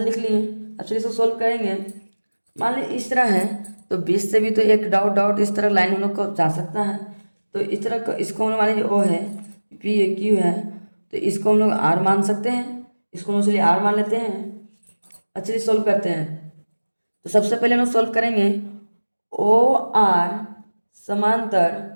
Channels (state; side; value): inverted; both; correlation -1.00